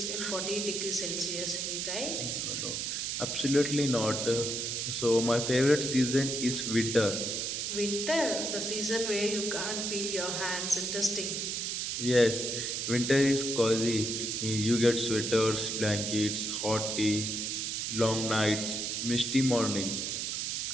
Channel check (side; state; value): right; noise; hiss, 2 dB below the sound